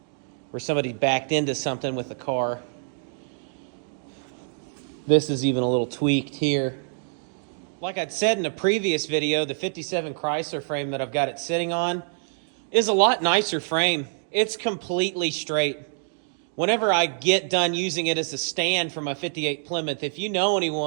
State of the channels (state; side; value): silent; left; digital silence